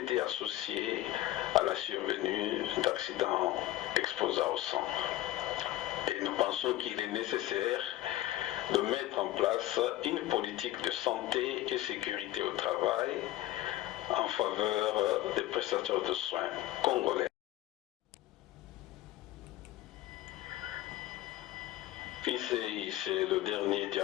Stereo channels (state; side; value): quieter; right; 15.3 dB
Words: associés à la survenue d'accidents exposants au sang. Et nous pensons qu'il est nécessaire de mettre en place une politique de santé et sécurité au travail en faveur des prestataires de soins congolais. Ici, c'est le dernier